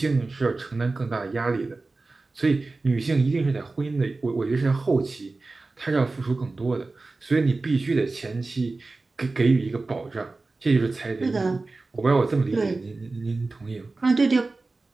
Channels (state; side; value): quieter; left; 3.5 dB